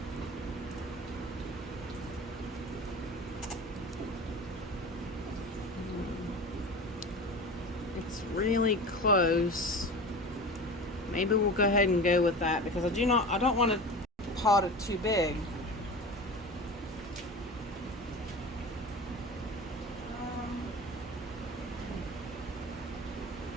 it's really close. Maybe we'll go ahead and go with that because I don't want to pot it too big.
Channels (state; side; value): normal; both; correlation 0.32